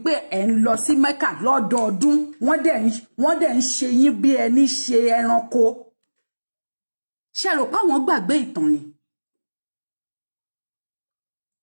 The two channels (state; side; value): inverted; both; correlation -1.00